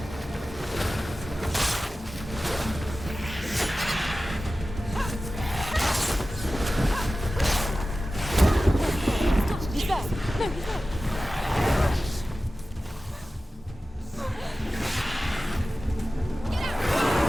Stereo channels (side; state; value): both; normal; correlation 0.95